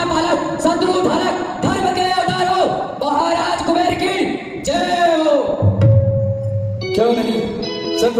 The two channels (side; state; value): both; identical; correlation 1.00